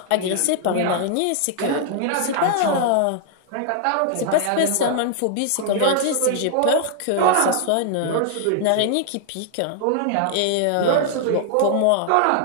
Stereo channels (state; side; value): different; both; correlation 0.00